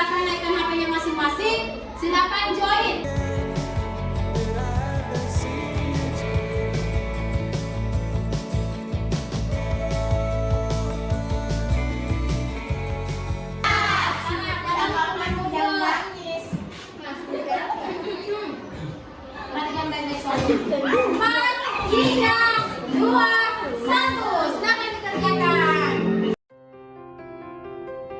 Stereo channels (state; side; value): identical; both; correlation 1.00